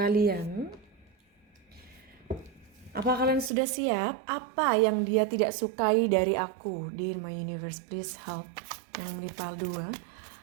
Apa kalian sudah siap? Apa yang dia tidak sukai dari aku? Dear my universe, please help. Yang Mipal 2,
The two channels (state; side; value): drops out; left; at 3.5 s